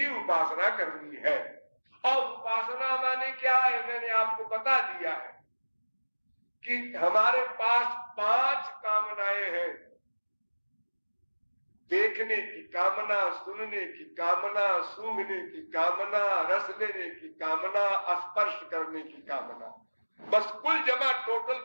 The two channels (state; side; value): inverted; both; correlation -1.00